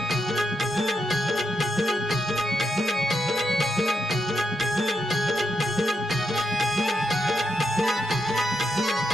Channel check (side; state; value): both; normal; correlation 0.83